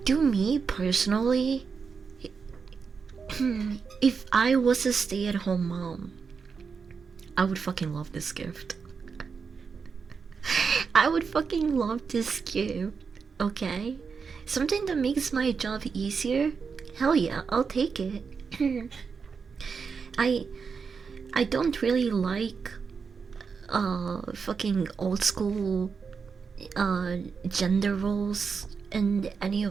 to me personally, if I was a stay-at-home mom, I would fucking love this gift. I would fucking love this gift. Okay? Something that makes my job easier? Hell yeah, I'll take it. I I don't really like fucking old school gender roles and any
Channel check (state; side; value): quieter; left; 5.6 dB